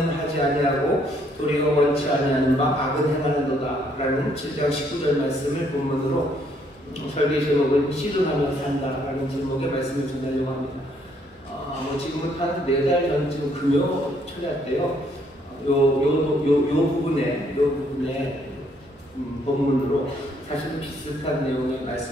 하지 아니하고 도리어 원치 아니하는 바 악은 행하는도다 라는 7장 19절 말씀을 본문으로 설계 제목은 씨름하며 산다라는 제목의 말씀을 전하려고 합니다. 지금은 한 4달 전쯤 금요 초대 때요. 요 부분에 본문으로 사실 비슷한 내용의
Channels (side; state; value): both; normal; correlation 0.68